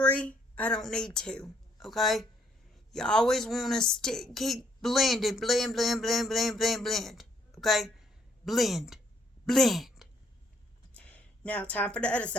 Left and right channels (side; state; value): both; normal; correlation 0.68